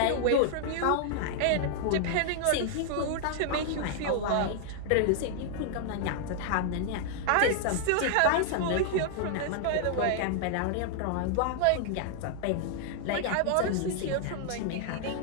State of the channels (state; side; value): different; both; correlation -0.01